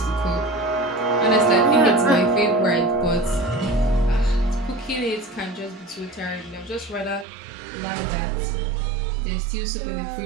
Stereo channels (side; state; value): left; drops out; at 7.2 s